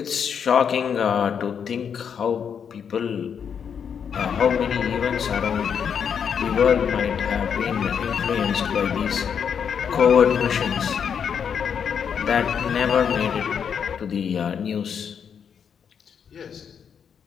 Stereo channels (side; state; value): right; quieter; 7.4 dB